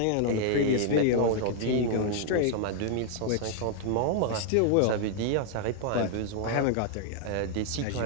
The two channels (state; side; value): different; both; correlation 0.00